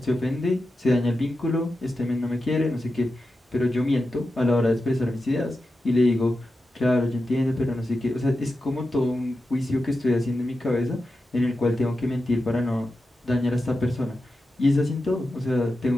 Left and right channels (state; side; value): normal; both; correlation 0.91